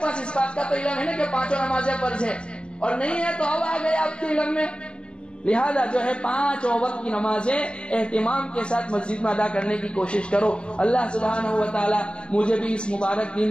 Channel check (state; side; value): late; right; 0.054 ms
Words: اس بات کا تو علم ہے نا کہ 5 نمازیں فرض ہے، اور نہیں ہے تو اب آ گئے آپ کے علم میں۔ لہذا جو ہے 5 وقت کی نمازیں اہتمام کے ساتھ مسجد میں ادا کرنے کی کوشش کرو۔ اللہ سبحانہ و تعالی مجھے بھی اس مبارک